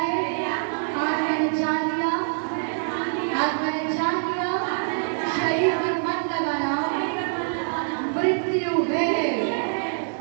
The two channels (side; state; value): left; silent; digital silence